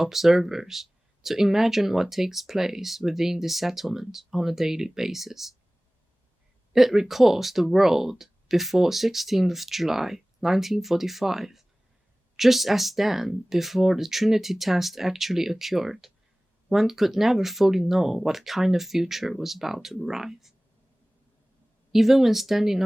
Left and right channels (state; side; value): normal; both; correlation 0.98